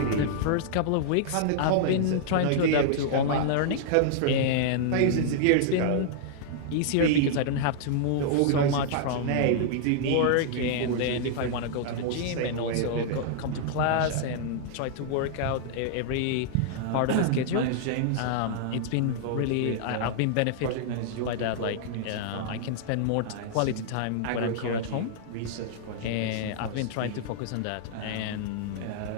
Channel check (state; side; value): different; both; correlation -0.01